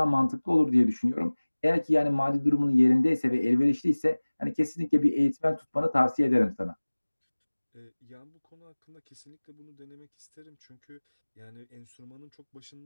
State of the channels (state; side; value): inverted; both; correlation -1.00